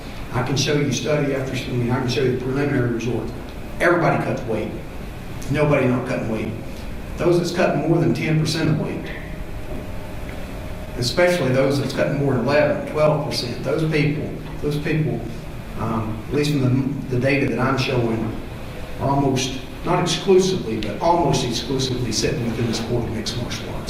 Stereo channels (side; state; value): both; identical; correlation 1.00